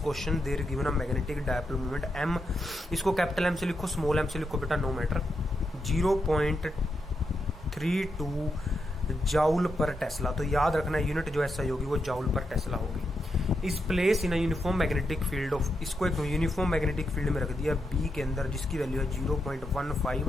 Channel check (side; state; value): both; normal; correlation 0.84